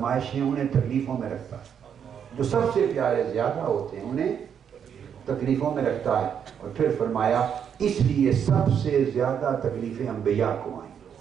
انہیں تکلیفوں میں رکھتا ہے. جو سب سے پیارے زیادہ ہوتے ہیں انہیں تکلیفوں میں رکھتا ہے. اور پھر فرمایا اس لیے سب سے زیادہ تکلیفیں انبیاء کو آئیں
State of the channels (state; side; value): quieter; left; 8.1 dB